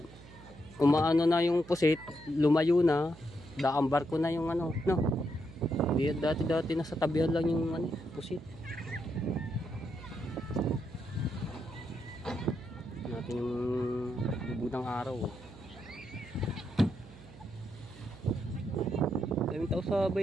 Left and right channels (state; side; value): noise; right; hum, 19 dB below the sound